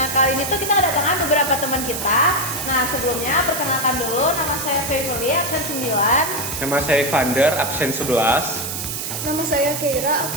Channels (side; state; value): right; noise; hiss, 5 dB below the sound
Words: kali ini tuh kita kedatangan beberapa teman kita. Nah, sebelumnya perkenalkan dulu, nama saya Fevoli, absen 9. Nama saya Vander, absen 11. Nama saya Keira,